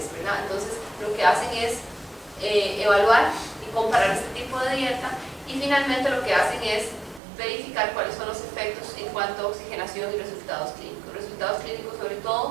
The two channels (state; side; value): drops out; left; at 7.2 s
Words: ¿verdad? Entonces, lo que hacen es evaluar y comparar este tipo de dieta, y finalmente lo que hacen es verificar cuáles son los efectos en cuanto a oxigenación y resultados clínicos. Resultados clínicos sobre